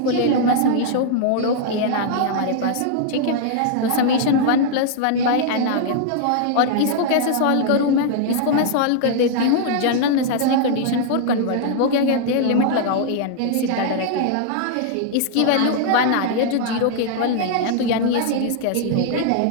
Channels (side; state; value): both; different; correlation -0.01